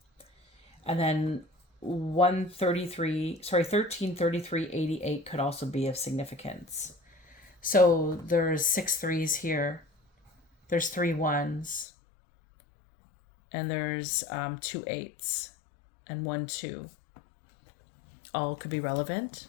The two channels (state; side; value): drops out; right; at 11.9 s